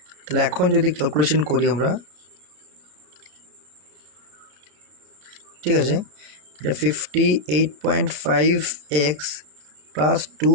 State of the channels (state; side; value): late; left; 33 ms